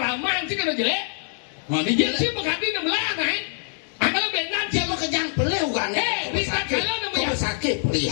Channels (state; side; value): silent; right; digital silence